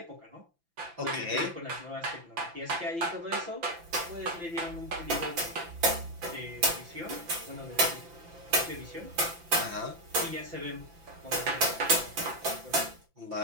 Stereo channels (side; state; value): left; late; 5.9 ms